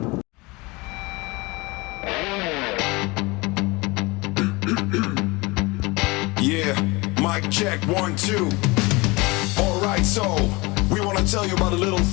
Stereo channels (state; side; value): quieter; right; 24.5 dB